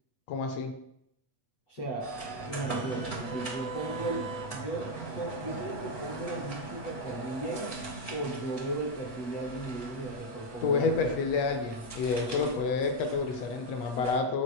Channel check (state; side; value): late; right; 8.3 ms